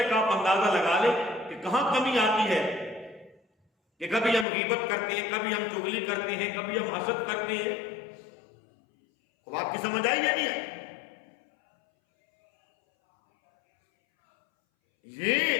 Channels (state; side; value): drops out; right; at 4.5 s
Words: آپ اندازہ لگا لیں کہ کہاں کمی آتی ہے، کہ کبھی ہم غیبت کرتے ہیں، کبھی ہم چغلی کرتے ہیں، کبھی ہم حسد کرتے ہیں۔ اب آپ کی سمجھ آئی یا نہیں آئی؟ یہ